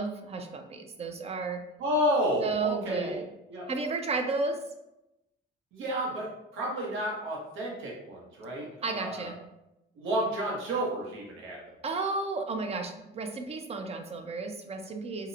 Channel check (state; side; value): normal; both; correlation 0.24